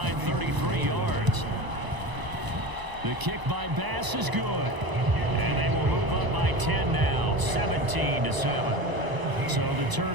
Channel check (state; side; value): late; left; 1.0 ms